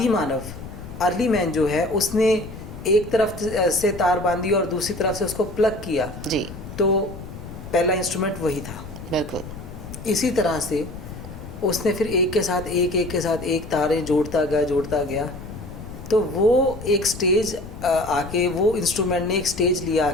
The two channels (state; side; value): noise; left; rumble, 12 dB below the sound